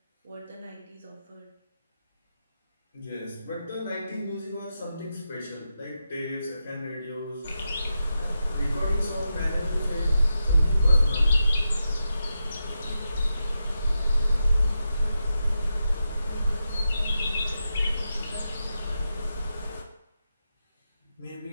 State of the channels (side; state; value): both; inverted; correlation -0.88